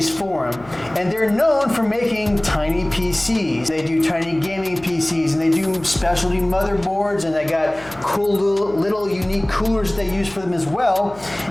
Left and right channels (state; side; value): noise; left; hum, 22 dB below the sound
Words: and they're known for making tiny PCs. They do tiny gaming PCs, and they do specialty motherboards, and they got cool little unique coolers they use for them as well.